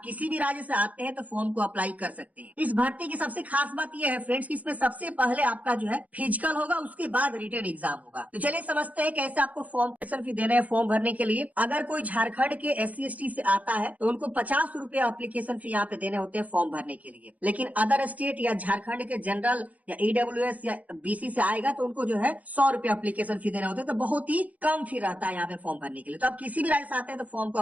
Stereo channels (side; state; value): left; late; 0.073 ms